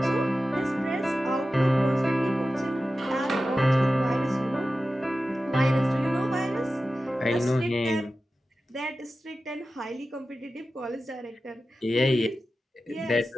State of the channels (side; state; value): both; normal; correlation 0.94